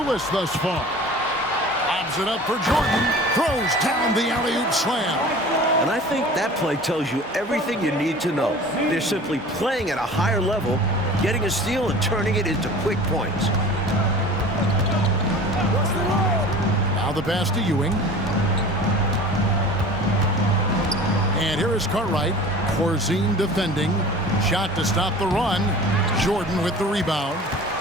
thus far. Lobs it up for Jordan. Throws down the alley-oop slam. And I think that play tells you everything you need to know. They're simply playing at a higher level, getting a steal and turning it into quick points. Now the pass to Ewing. And here is Cartwright. Corzine defending. Shot to stop the run. Jordan with the rebound.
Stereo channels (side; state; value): both; normal; correlation 0.41